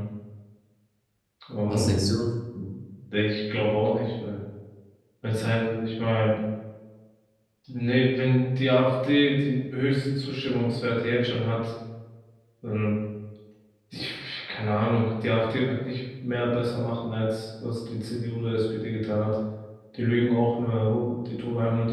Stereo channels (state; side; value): identical; both; correlation 1.00